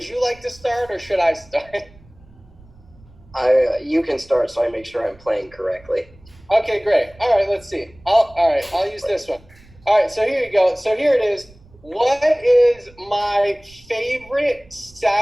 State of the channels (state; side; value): noise; right; rumble, 26 dB below the sound